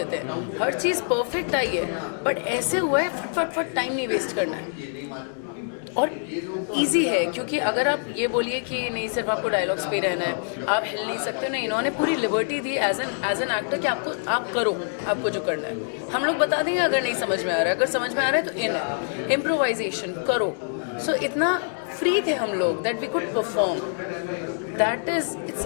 हैं. हर चीज़ परफेक्ट आई है, बट ऐसे हुआ है फट फट फट टाइम नहीं वेस्ट करना है. और इजी है क्योंकि अगर आप ये बोलिए कि नहीं सिर्फ आपको डायलॉग्स पे रहना है, आप हिल नहीं सकते. नहीं, इन्होंने पूरी लिबर्टी दी एज एन एक्टर कि आप करो आपको जो करना है. हम लोग बता देंगे अगर नहीं समझ में आ रहा है, अगर समझ में आ रहा है तो इम्प्रोवाइजेशन करो. सो इतना फ्री थे हम लोग that we could perform. That is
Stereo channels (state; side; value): silent; right; digital silence